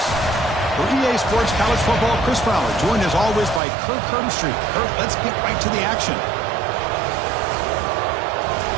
For EA Sports College Football, Chris Fowler, joined as always by Kirk Herbstreit. Kirk, let's get right to the action.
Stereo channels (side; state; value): left; drops out; at 3.6 s